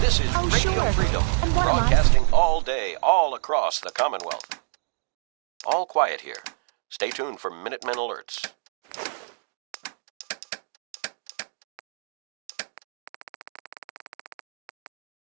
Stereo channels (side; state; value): left; silent; digital silence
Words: This is Radio Freedom, broadcasting all day, all across the Commonwealth. All quiet here. Stay tuned for Minutemen alerts.